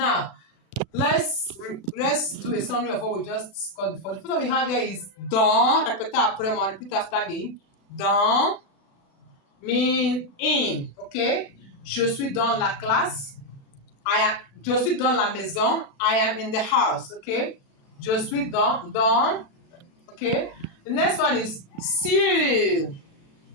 let's do a summary of what we just discussed before. The first one we have here is dans. Répétez après moi, repeat after me. Dans means in. Okay? Je suis dans la classe. Je suis dans la maison. I am in the house. Okay? Je suis dans. Okay? The next one is sur.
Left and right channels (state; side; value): late; right; 36 ms